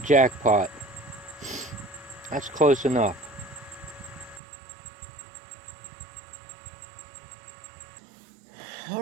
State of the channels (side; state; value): left; drops out; at 4.4 s